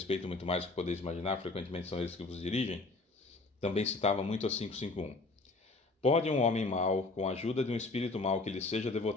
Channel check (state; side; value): quieter; right; 3.4 dB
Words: muito mais do que podeis imaginar, frequentemente são eles que vos dirigem. Também citava muito a 551. Pode um homem mau, com a ajuda de um espírito mau que lhe seja